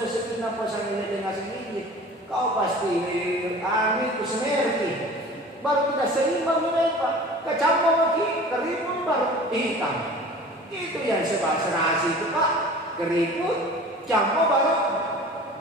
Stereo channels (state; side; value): normal; both; correlation 0.42